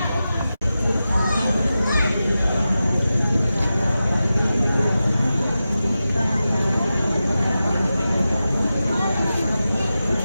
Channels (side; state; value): both; inverted; correlation -0.93